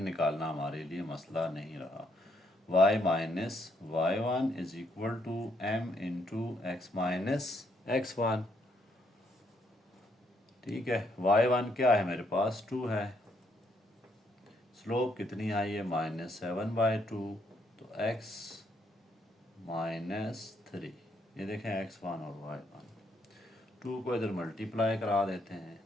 निकालना हमारे लिए मसला नहीं रहा। y minus y1 is equal to m into x minus x1, ठीक है। y1 क्या है मेरे पास, 2 है, स्लोप कितनी आई है, -7/2, तो x -3, ये देखें x1 और y1, 2 को इधर मल्टीप्लाई करा देते हैं,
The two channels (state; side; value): normal; both; correlation 0.73